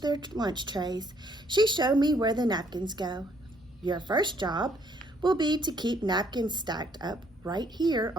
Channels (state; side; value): normal; both; correlation 0.66